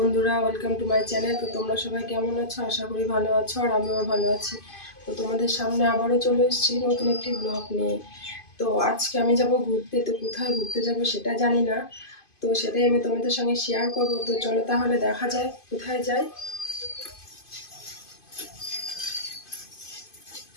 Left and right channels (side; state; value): right; late; 2.5 ms